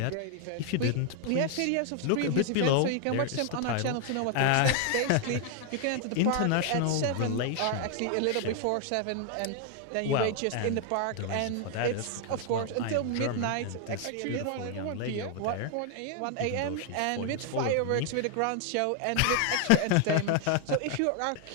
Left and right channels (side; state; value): both; different; correlation 0.00